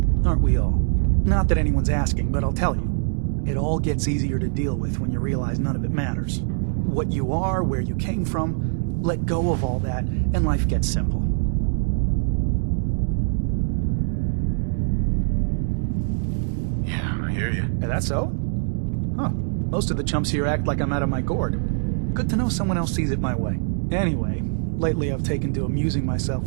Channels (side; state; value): left; silent; digital silence